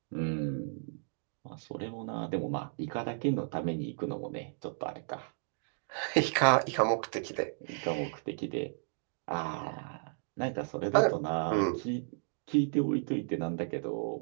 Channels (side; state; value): left; silent; digital silence